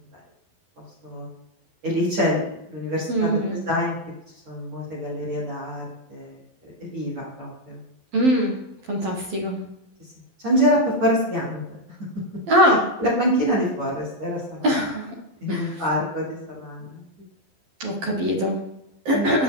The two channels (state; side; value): late; left; 12 ms